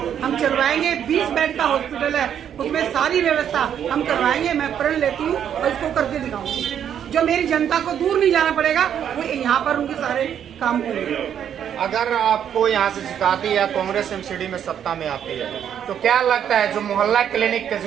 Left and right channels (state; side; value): quieter; left; 9.1 dB